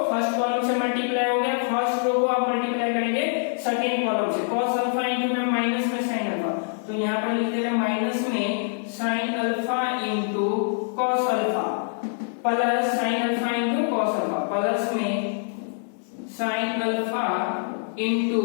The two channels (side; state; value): right; silent; 62 dB below the other